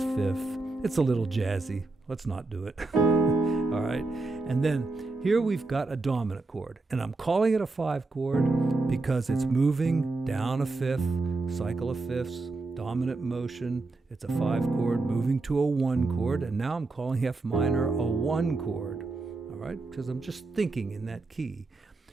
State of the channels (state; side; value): quieter; left; 3.4 dB